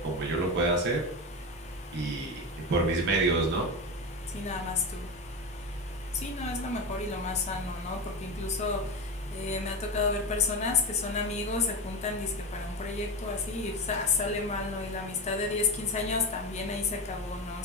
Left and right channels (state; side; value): normal; both; correlation 0.20